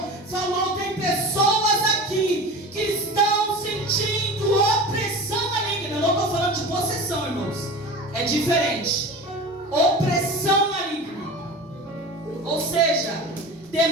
falou: tem pessoas aqui que estão sentindo opressão maligna. Eu não estou falando de possessão, irmãos, é diferente. Opressão maligna, ou seja,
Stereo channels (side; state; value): both; normal; correlation 0.33